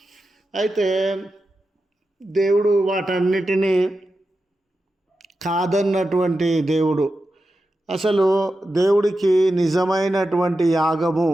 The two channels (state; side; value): normal; both; correlation 0.91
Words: అయితే దేవుడు వాటన్నిటినీ కాదన్నటువంటి దేవుడు. అసలు దేవుడికి నిజమైనటువంటి యాగము,